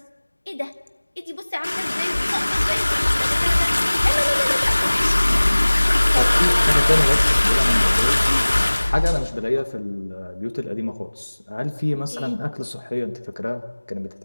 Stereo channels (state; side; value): inverted; both; correlation -1.00